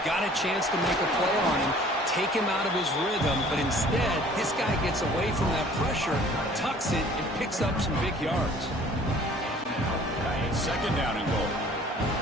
got a chance to make a play on him, take him out of his rhythm, but instead, this guy gets away from that pressure, tucks it, and picks up some big yards. Second down and goal.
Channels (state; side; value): normal; both; correlation 0.52